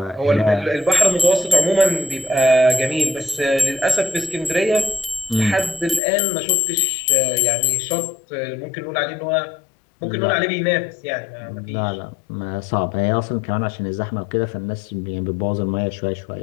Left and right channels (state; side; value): drops out; right; at 6.0 s